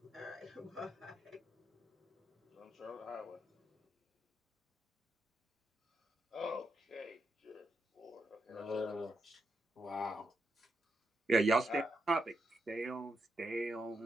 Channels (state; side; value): normal; both; correlation 0.83